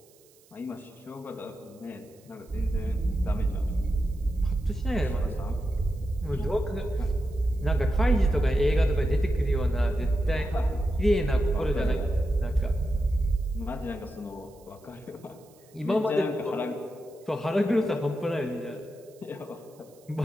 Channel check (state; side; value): noise; right; hiss, 29 dB below the sound